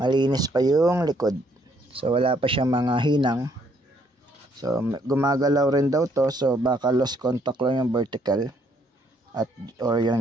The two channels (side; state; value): both; normal; correlation 0.68